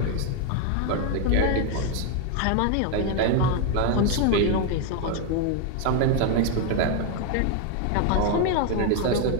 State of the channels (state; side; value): different; both; correlation 0.01